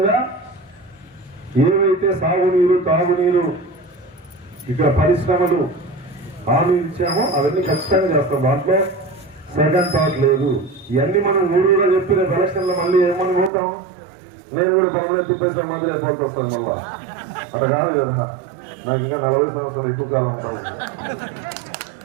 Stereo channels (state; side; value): drops out; left; at 13.5 s